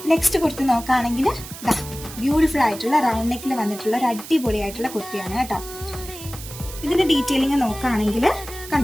നെക്സ്റ്റ് കുർത്തി നോക്കുകയാണെങ്കിൽ ബ്യൂട്ടിഫുൾ ആയിട്ടുള്ള റൗണ്ട് നെക്കിൽ വന്നിട്ടുള്ള ഒരു അടിപൊളിയായിട്ടുള്ള കുർത്തിയാണ് കേട്ടോ. ഇതിന്റെ ഡീറ്റെയിലിംഗ് നോക്കുകയാണെങ്കിൽ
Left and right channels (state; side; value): noise; right; hiss, 13 dB below the sound